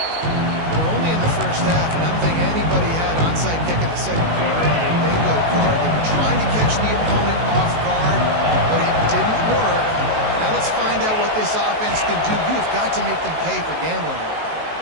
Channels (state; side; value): late; left; 19 ms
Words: We're only in the first half, and I don't think anybody had onside kick in the second quarter on their bingo card. They were trying to catch the opponent off guard, but it didn't work. Now let's find out what this offense can do. You have got to make them pay for gambling here.